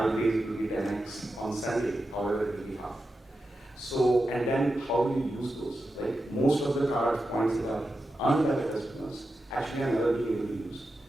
days, it will be 10x on Sunday, however it will be half. So, and then how do you use those, right? Most of the card points that are earned by the customers actually are never being able to use.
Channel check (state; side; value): normal; both; correlation 0.90